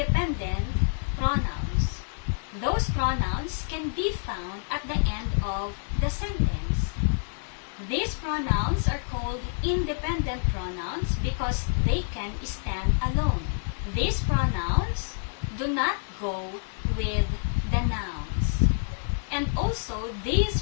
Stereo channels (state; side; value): silent; right; digital silence